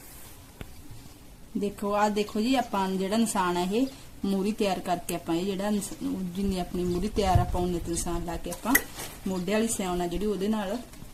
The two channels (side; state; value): both; identical; correlation 1.00